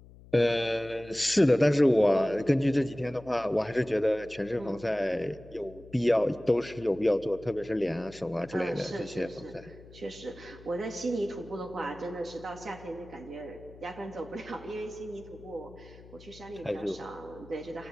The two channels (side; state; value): left; noise; hum, 21 dB below the sound